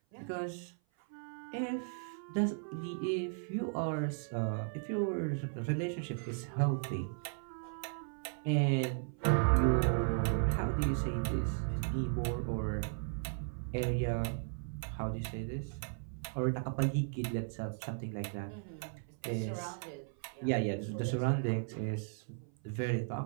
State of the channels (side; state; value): left; silent; 54 dB below the other